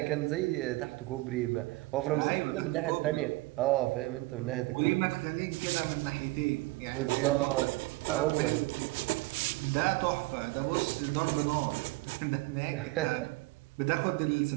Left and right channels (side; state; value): left; quieter; 22.1 dB